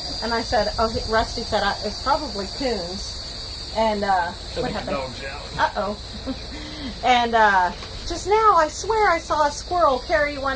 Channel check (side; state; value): both; identical; correlation 1.00